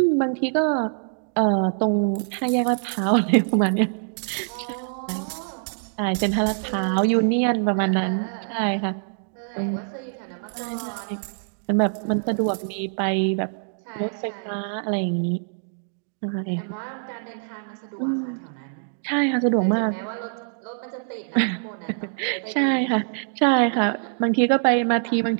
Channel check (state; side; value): silent; left; digital silence